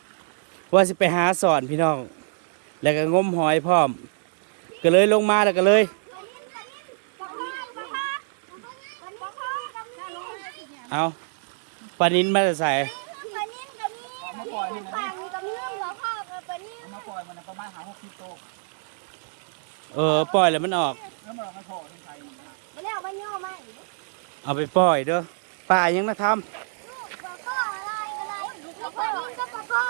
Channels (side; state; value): left; silent; digital silence